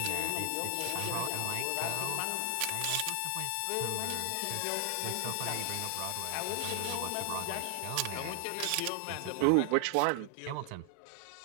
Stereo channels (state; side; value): different; both; correlation 0.00